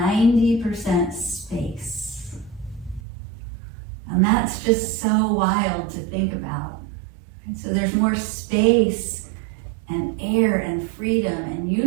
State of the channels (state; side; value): drops out; left; at 3.0 s